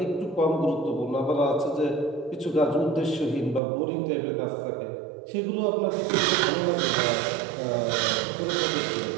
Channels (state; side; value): drops out; left; at 3.6 s